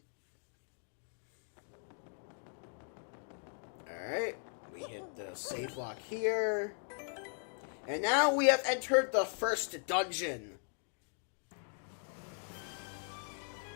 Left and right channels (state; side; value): silent; right; 52 dB below the other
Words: Alright, we hit the save block here. And now we have entered the first dungeon.